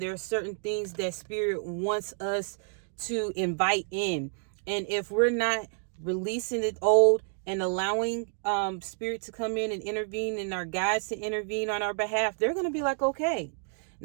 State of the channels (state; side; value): silent; left; 58 dB below the other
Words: there are certain things that spirit wants us to invite in. And if we're not releasing the old and allowing spirit to come in and intervene, and our guides to intervene on our behalf, they're going to be like, okay.